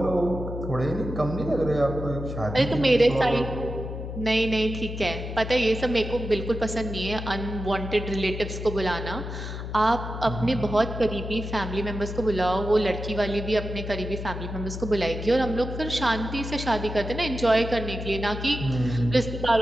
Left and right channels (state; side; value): noise; left; hum, 7 dB below the sound